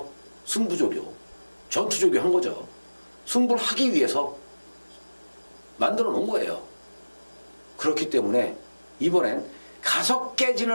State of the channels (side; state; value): both; inverted; correlation -1.00